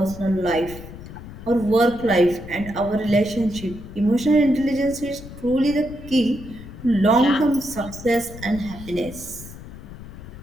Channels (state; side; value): noise; left; rumble, 14 dB below the sound